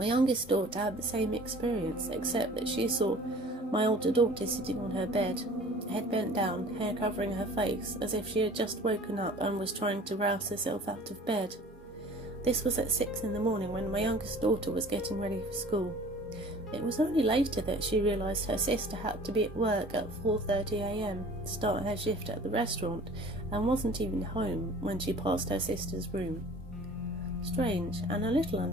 youngest daughter had the same experience, except that she saw my older daughter sitting on her bed, head bent down, hair covering her face, as if she had just woken up and was trying to rouse herself out of bed. This was at 6 in the morning when my youngest daughter was getting ready for school. It was only later that she realised her sister had to be at work at 4:30 a.m. to start her shift at the restaurant, and wasn't even home when she passed her sister's room. Strange and a little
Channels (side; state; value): both; normal; correlation 0.47